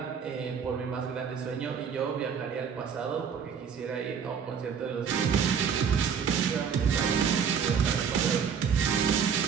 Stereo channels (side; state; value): left; quieter; 7.0 dB